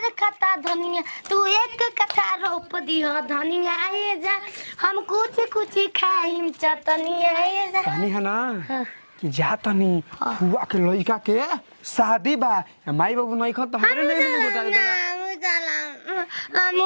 कथा धनिया तू एक कथा रोप दियो धनिया आए जा हम कुछ खाइम चटनिया आए जा कहानी है ना कि जा तनी फुआ के लइका के शादी बा माई बाबू नहीं खत हमरे नहीं बता दे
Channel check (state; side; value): inverted; both; correlation -1.00